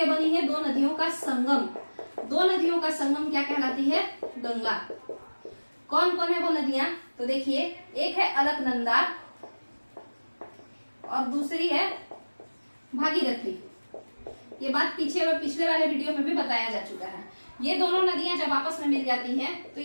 बनी है, दो नदियों का संगम। दो नदियों का संगम क्या कहलाती है? गंगा। कौन कौन है वो नदियां? तो देखिए, एक है अलकनंदा और दूसरी है भागीरथी। ये बात पिछले वाले वीडियो में भी बताया जा चुका है। ये दोनों नदियां जब आपस में मिल जाती हैं तो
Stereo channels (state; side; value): inverted; both; correlation -1.00